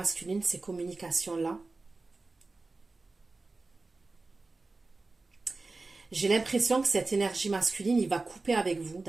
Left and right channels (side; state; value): left; quieter; 3.5 dB